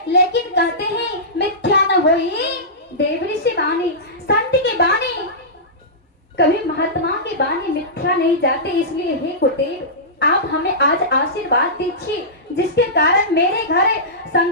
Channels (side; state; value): both; normal; correlation -0.18